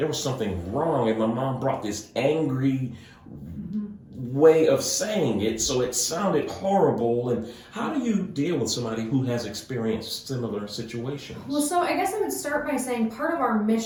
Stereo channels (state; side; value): identical; both; correlation 1.00